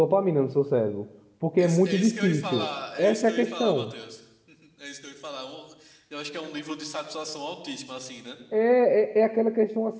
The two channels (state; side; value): identical; both; correlation 1.00